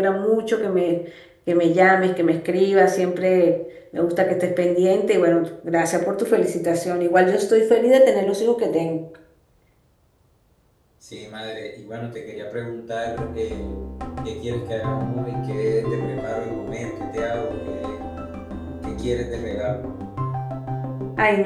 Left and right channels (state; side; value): identical; both; correlation 1.00